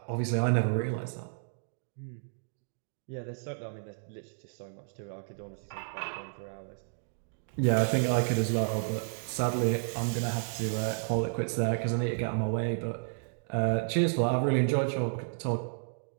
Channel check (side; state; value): left; silent; digital silence